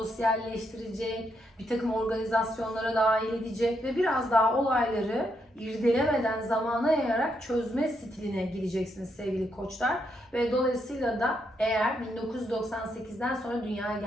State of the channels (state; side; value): normal; both; correlation 0.79